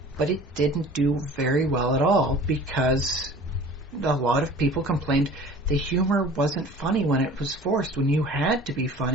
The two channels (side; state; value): both; normal; correlation 0.44